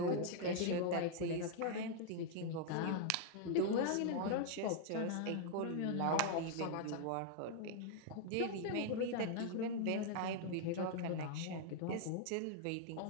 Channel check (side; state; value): both; different; correlation 0.00